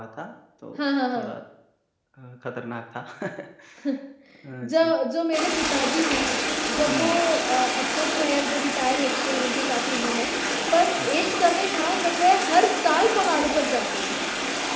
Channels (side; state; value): both; identical; correlation 1.00